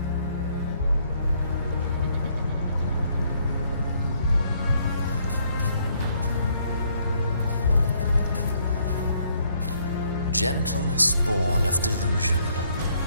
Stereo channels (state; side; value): inverted; both; correlation -0.68